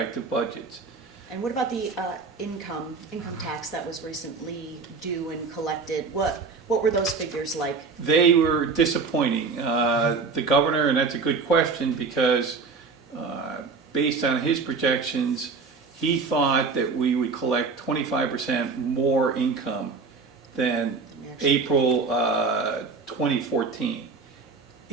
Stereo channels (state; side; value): quieter; left; 4.6 dB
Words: budgets. And what about the income tax that was recently due and collected? What were those figures like? They were disappointing. The governor, and that's a good question because based on his projections, he thought that we would collect 25% more income than April 2014.